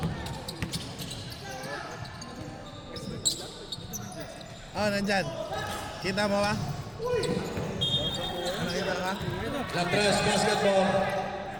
Nandyan. Kita mo ba? Nakita ka? La Tres basketball.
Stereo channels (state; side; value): identical; both; correlation 1.00